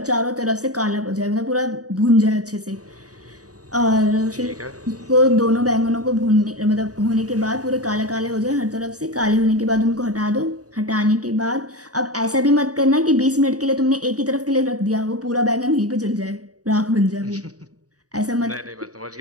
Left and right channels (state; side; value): late; left; 0.67 ms